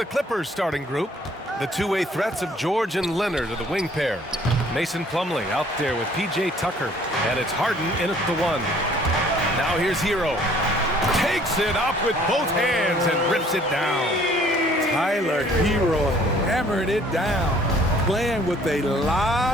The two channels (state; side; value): normal; both; correlation 0.57